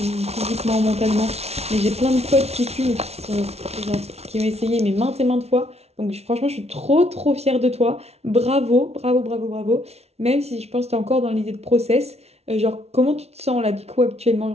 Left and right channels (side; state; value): left; late; 0.31 ms